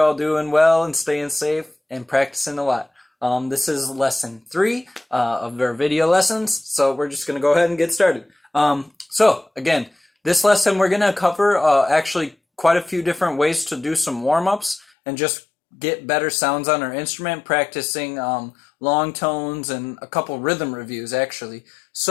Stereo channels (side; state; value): right; drops out; at 14.9 s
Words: doing well and staying safe and practicing a lot. This is lesson 3 of our video lessons, so we're just going to go ahead and get started. Again, this lesson we're going to cover actually quite a few different ways to do some warm-ups and just get better sounds on our instrument, practicing long tones and a couple rhythm reviews actually.